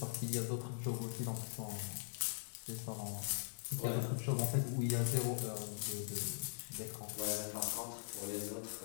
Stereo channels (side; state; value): right; silent; digital silence